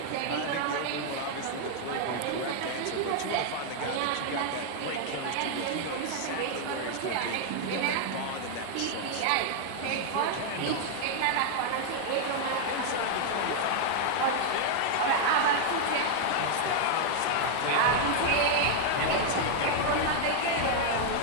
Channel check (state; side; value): different; both; correlation 0.00